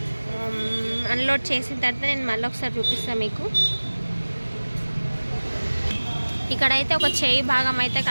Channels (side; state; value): both; inverted; correlation -1.00